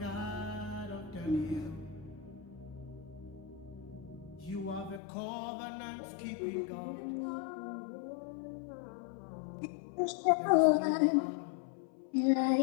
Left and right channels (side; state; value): right; drops out; at 5.0 s